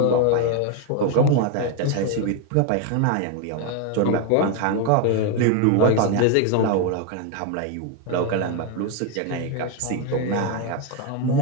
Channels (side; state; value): both; different; correlation 0.01